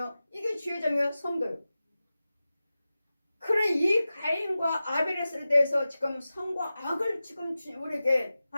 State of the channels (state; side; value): inverted; both; correlation -0.95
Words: 이게 주의종이요. 성도요. 그래 이 가인과 아벨에 대해서 지금 선과 악을 지금 우리에게